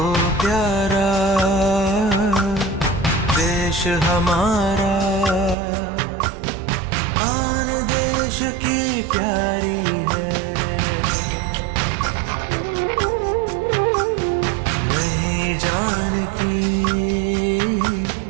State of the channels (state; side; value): drops out; left; at 5.6 s